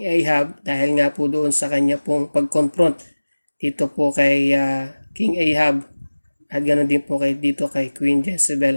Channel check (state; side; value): inverted; both; correlation -1.00